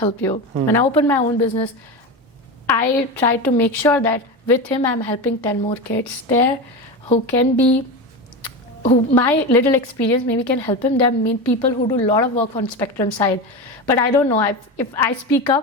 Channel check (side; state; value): both; normal; correlation 0.21